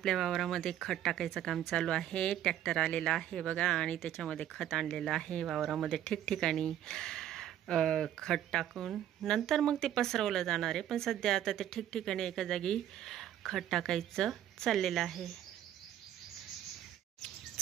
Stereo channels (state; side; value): quieter; left; 11.4 dB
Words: वावरामध्ये खत टाकायचं काम चालू आहे. ट्रॅक्टर आलेला आहे बघा आणि त्याच्यामध्ये खत आणलेलं आहे. वावरामध्ये ठिकठिकाणी खत टाकून नंतर मग ते पसरवलं जाणार आहे. पण सध्या आता ते ठिकठिकाणी एका जागी खत टाकायचं चाललेलं आहे.